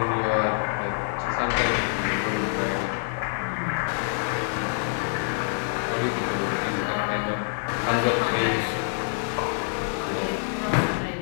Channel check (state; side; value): silent; right; 61 dB below the other